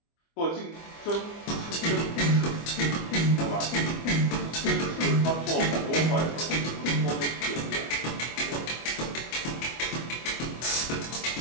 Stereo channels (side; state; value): right; late; 25 ms